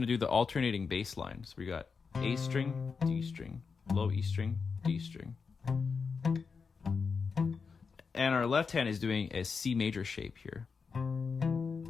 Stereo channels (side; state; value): right; quieter; 5.3 dB